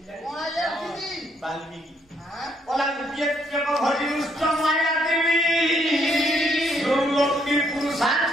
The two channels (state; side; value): normal; both; correlation 0.71